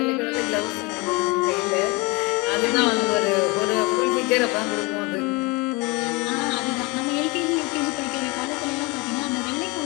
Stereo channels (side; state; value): right; quieter; 26.8 dB